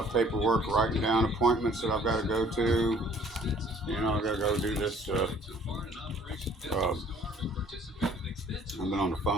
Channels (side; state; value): both; normal; correlation 0.57